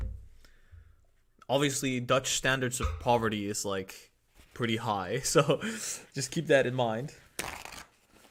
Obviously, Dutch standards of poverty is like pretty high, so just keep that in mind.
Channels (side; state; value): both; identical; correlation 1.00